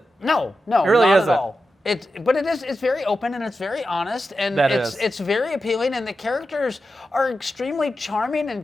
no, It really not isn't. at all. It's very open and it's very honest and it's very appealing, and the characters are extremely charming and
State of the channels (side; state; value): both; normal; correlation 0.90